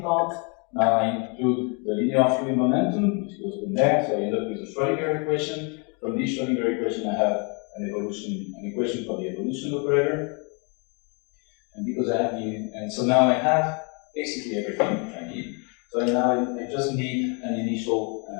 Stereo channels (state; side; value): quieter; right; 35.0 dB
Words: part. Now I include the linear fluid momentum, which goes in there. So I end up with a Schrödinger equation. From this Schrödinger equation, I have an equation for the evolution operator. And because I have so now I have basically everything I need. So now I just need an initial